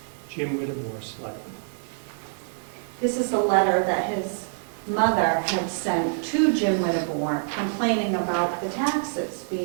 Jim Wittenmores, Selectmen. This is a letter that his mother had sent to Jim Whittemore complaining about the taxes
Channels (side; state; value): left; silent; digital silence